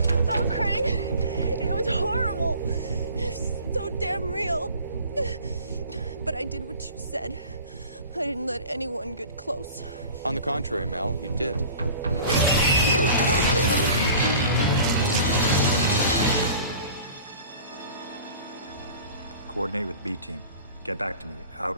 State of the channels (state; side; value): inverted; both; correlation -0.44